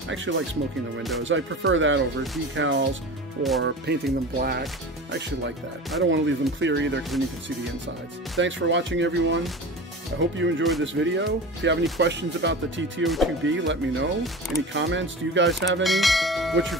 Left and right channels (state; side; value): normal; both; correlation 0.32